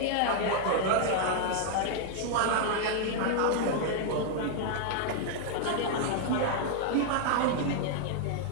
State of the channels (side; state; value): both; different; correlation 0.00